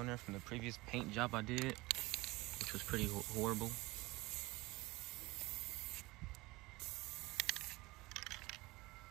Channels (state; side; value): quieter; left; 21.6 dB